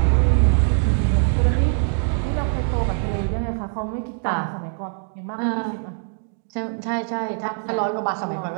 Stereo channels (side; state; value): left; silent; 58 dB below the other